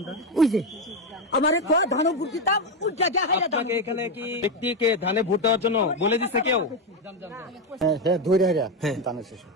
ওই যে আমারে ধানও ভোট দিতাম উজ্জা দেখাই। আপনাকে এখানে কি ব্যক্তিকে ধানে ভোট দেওয়ার জন্য বলে দিছে কেউ? হ্যাঁ ধরে ধানের শেষ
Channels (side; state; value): both; normal; correlation 0.09